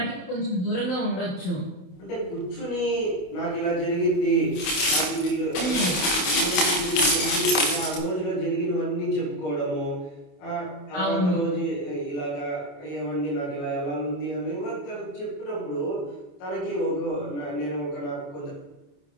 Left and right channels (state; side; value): late; right; 28 ms